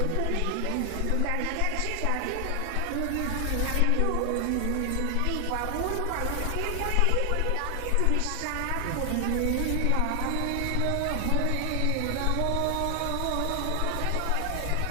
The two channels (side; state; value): both; different; correlation 0.00